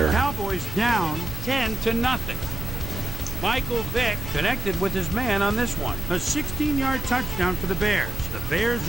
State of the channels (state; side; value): normal; both; correlation 0.90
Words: Cowboys down 10-0. Michael Vick connected with his man on this one. A 16-yard touchdown for the Bears. The Bears